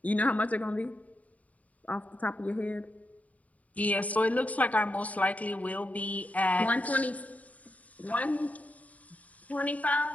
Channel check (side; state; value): right; late; 0.071 ms